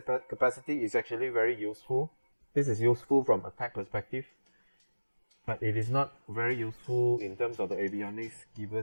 capacity is actually very useful. This is useful from attack perspective, but it is not very useful in terms of the avionics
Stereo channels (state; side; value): inverted; both; correlation -1.00